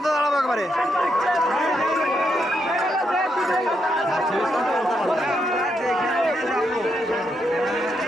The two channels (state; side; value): normal; both; correlation 0.80